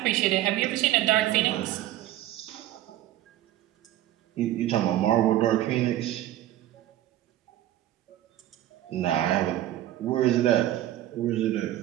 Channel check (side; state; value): left; quieter; 13.7 dB